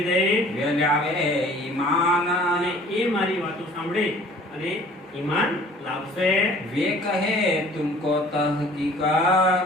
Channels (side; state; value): both; normal; correlation 0.51